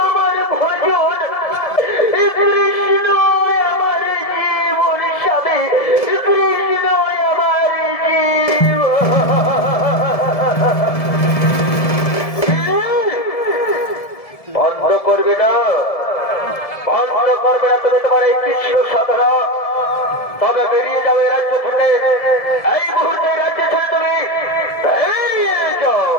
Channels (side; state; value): right; late; 1.7 ms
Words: আমার ভজন, কৃষ্ণ আমার জীবন স্বামী, কৃষ্ণ আমার জীবন। বন্ধ করবে না, বন্ধ করবে না, তবে তোমার এই কৃষ্ণ সাধনা, তবে বেরিয়ে যাও এই রাজ্য থেকে, এই মুহূর্তে রাজ্য ছেড়ে তুমি বেরিয়ে যাও।